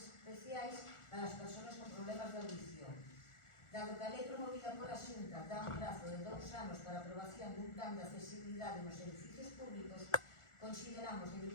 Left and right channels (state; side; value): late; right; 1.4 ms